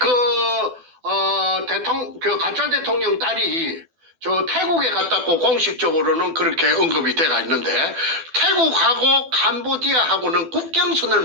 가짜 대통령 딸이 저 태국에 갔다고 공식적으로는 그렇게 언급이 돼가 있는데, 태국하고 캄보디아하고는 국경선을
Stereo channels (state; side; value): late; left; 12 ms